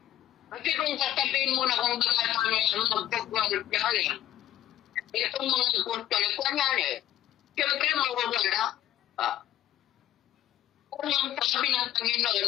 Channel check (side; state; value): right; quieter; 12.9 dB